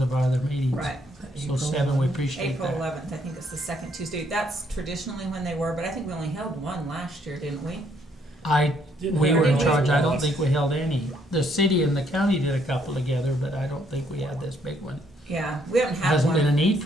our other meetings. Right. So 7, we appreciate April that. 11th, I think it's the second Tuesday. That's traditionally when they were, but I think we only held one last year, didn't we? We were in Didn't charge, we? I don't think we held any. The city and the county did a couple together, but I don't think we had this big one. Yeah, we haven't had Hasn't been a one. need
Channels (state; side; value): normal; both; correlation 0.69